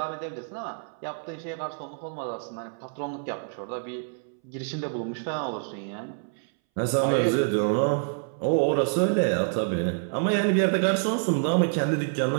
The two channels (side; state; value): left; silent; 60 dB below the other